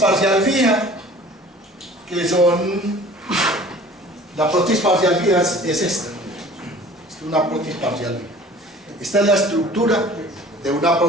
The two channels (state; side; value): normal; both; correlation 0.47